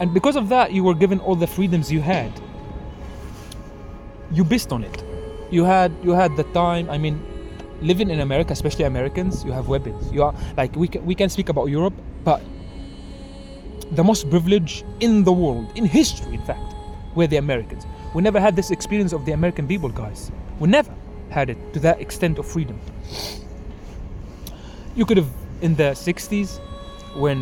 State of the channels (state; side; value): identical; both; correlation 1.00